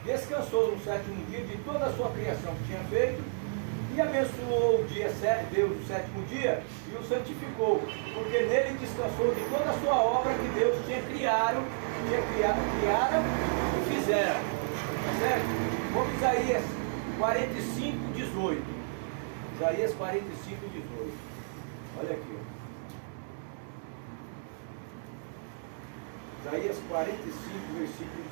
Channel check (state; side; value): silent; left; digital silence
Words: descansou no sétimo dia de toda a sua criação que tinha feito, e abençoou o dia, Deus o sétimo dia, e o santificou, porque nele descansou de toda a sua obra que Deus tinha criado e fizera. Tá certo? Vamos Isaías 45, 18. Isaías 45, 18. Olha aqui. Isaías 45, versículo